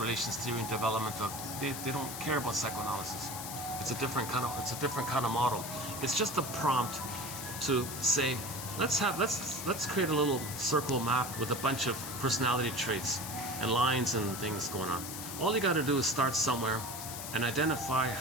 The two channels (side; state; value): left; noise; hiss, 8 dB below the sound